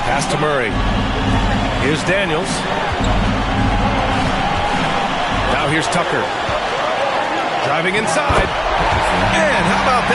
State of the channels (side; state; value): both; identical; correlation 1.00